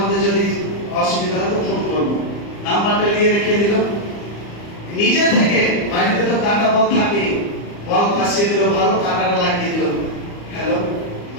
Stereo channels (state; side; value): late; right; 34 ms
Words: যদি অসুবিধা হয় তো ফোন করবো। নাম্বারটা নিয়ে রেখে দিল। নিজে থেকে বাড়িতে তো কাটা বল থাকে, বল ফাঁসিয়ে দিল, ভালো কাটাটা লাগিয়ে দিল। হ্যালো